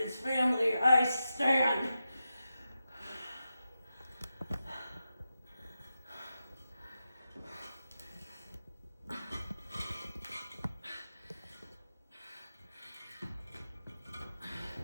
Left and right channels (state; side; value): inverted; both; correlation -0.90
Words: family, I stand.